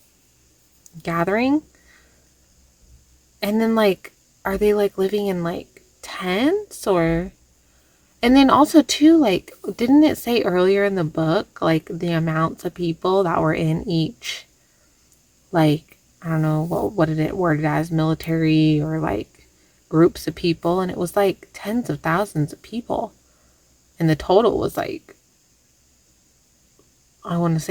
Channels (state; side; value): identical; both; correlation 1.00